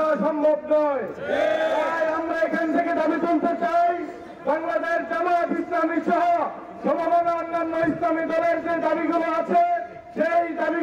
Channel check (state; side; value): identical; both; correlation 1.00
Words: সম্ভব নয়। তাই আমরা এখান থেকে দাবি তুলতে চাই, বাংলাদেশ জামায়াত ইসলামী সহ সমমনা অন্যান্য ইসলামী দলের যে দাবিগুলো আছে, সেই